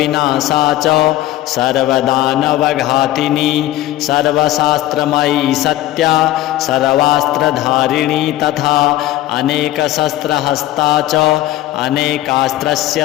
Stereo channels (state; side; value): quieter; right; 14.7 dB